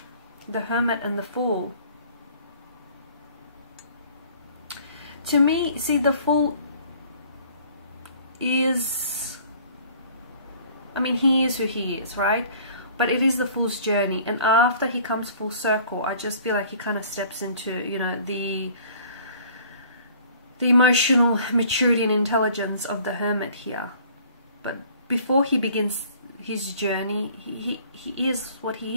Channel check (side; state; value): both; inverted; correlation -0.53